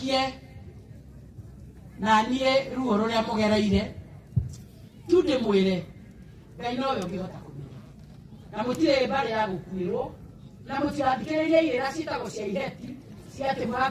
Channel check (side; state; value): both; identical; correlation 1.00